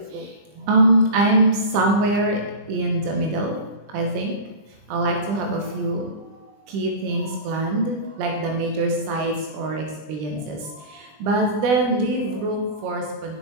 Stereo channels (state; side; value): late; left; 20 ms